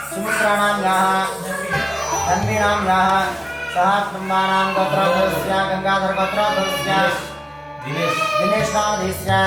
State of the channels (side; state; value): both; identical; correlation 1.00